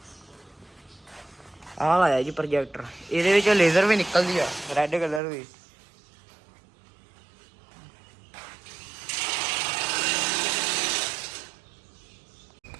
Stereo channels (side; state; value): left; drops out; at 5.2 s